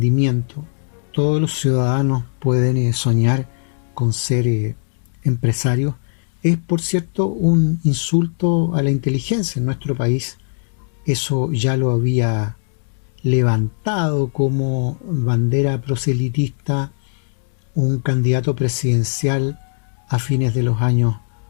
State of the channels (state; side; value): silent; right; digital silence